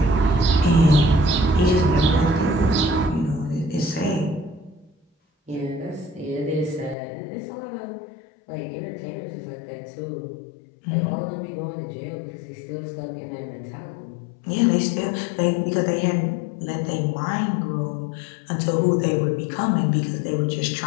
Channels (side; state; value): right; drops out; at 7.0 s